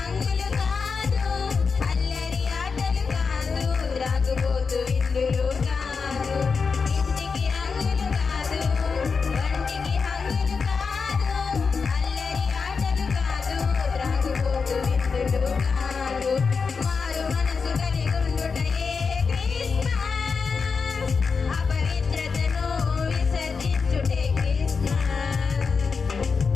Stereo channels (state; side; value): quieter; right; 5.2 dB